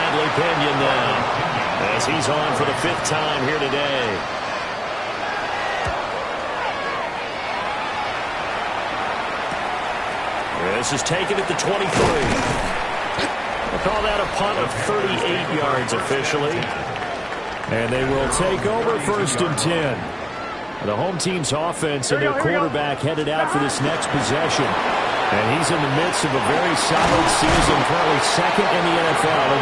Pinion now, as he's on for the 5th time here today. This is taken at the 23. We'll call that a punt of 38 yards officially. And they will take over 1st and 10. The home team's offense and their quarterback headed out for this next possession. And he's in the midst of a very solid season, currently second in the NFL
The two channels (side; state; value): both; identical; correlation 1.00